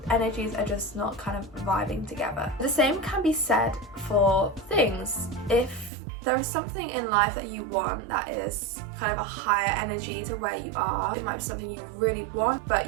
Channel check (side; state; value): left; drops out; at 5.9 s